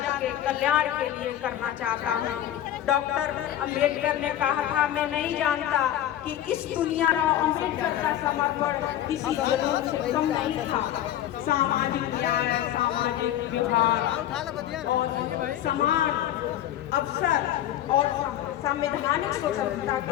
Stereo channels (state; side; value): quieter; right; 12.1 dB